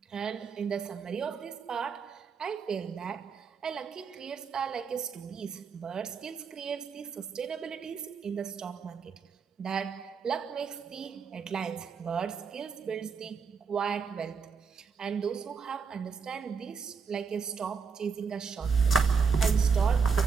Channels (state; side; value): quieter; left; 5.7 dB